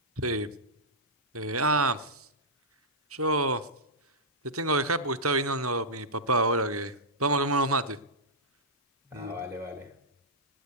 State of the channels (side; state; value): both; normal; correlation -0.12